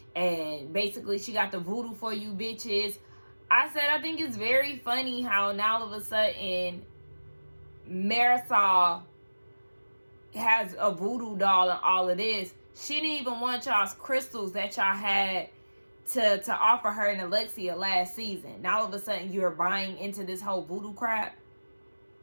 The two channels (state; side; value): inverted; both; correlation -1.00